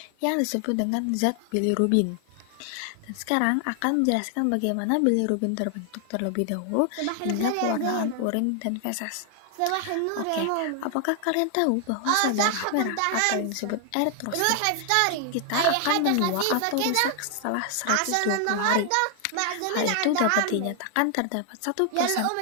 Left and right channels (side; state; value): both; different; correlation 0.00